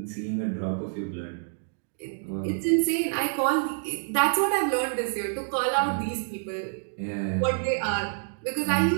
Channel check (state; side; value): silent; left; digital silence